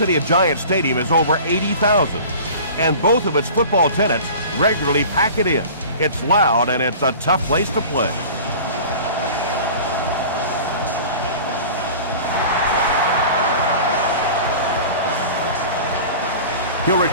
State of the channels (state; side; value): inverted; both; correlation -0.40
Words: of Giant Stadium is over 80,000, and both of its football tenants regularly pack it in. It's loud, and it's a tough place to play. He'll